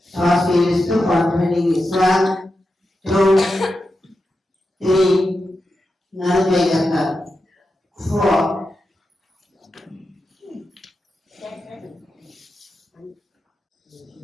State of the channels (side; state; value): both; normal; correlation 0.89